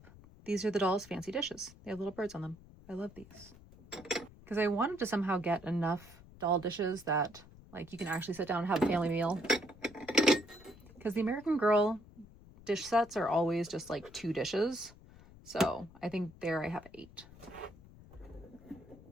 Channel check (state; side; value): noise; left; rumble, 21 dB below the sound